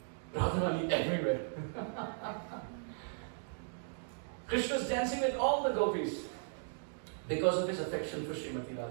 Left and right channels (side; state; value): left; silent; digital silence